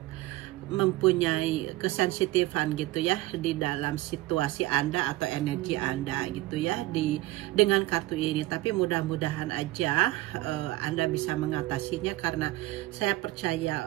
mempunyai kesensitifan gitu ya di dalam situasi Anda atau energi Anda gitu ya dengan kartu ini. Tapi mudah-mudahan aja Anda bisa mengatasinya, karena saya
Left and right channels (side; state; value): left; quieter; 18.4 dB